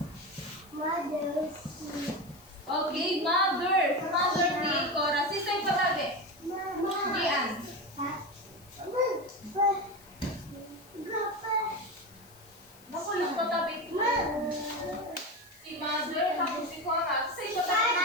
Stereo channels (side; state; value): left; noise; hiss, 24 dB below the sound